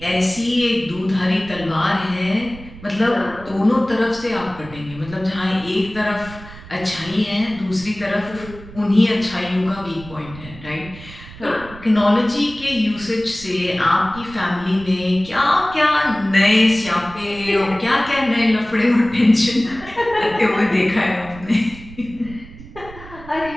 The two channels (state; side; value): noise; right; rumble, 17 dB below the sound